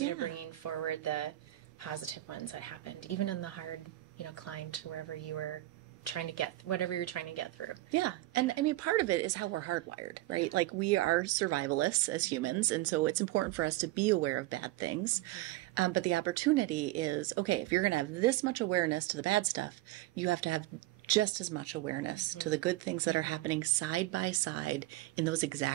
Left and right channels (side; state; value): left; quieter; 17.2 dB